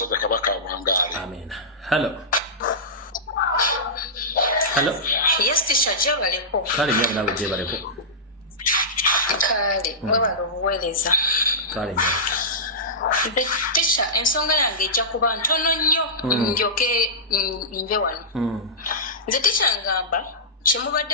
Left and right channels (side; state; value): both; normal; correlation -0.16